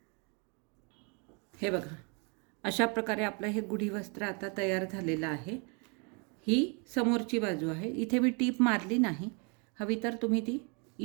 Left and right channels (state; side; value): quieter; left; 34.3 dB